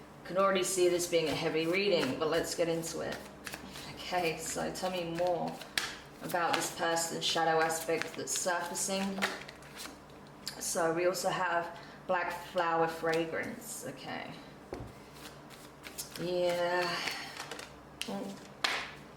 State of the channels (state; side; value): identical; both; correlation 1.00